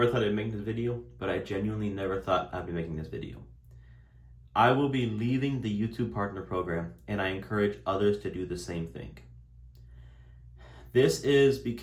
thought I'd make this video, but I genuinely never thought I'd be making this video. I will be leaving the YouTube Partner Program, and I encourage others to do the same thing. This is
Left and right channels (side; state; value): both; identical; correlation 1.00